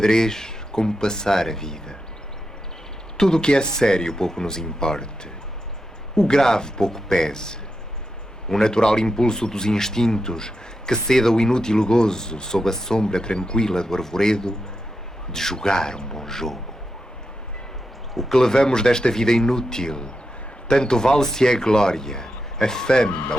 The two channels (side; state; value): both; normal; correlation 0.87